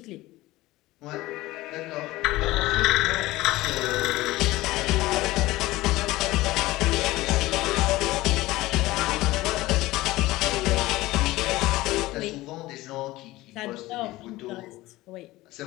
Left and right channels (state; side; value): quieter; right; 18.3 dB